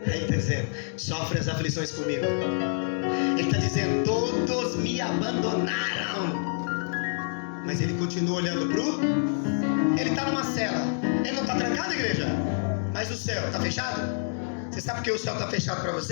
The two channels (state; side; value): silent; right; digital silence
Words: Aí ele está dizendo: sofre as aflições comigo. Ele está dizendo: todos me abandonaram. Mas ele continua olhando pro. Ele está numa cela. Ele não está trancado, igreja? Mas o céu está fechado? Você sabe por que o céu está fechado para